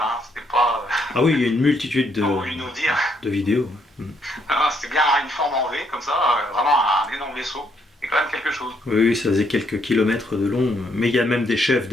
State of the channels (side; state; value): both; normal; correlation 0.72